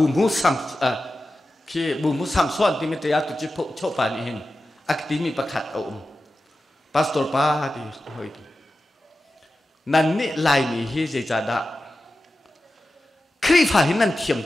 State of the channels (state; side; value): normal; both; correlation 0.93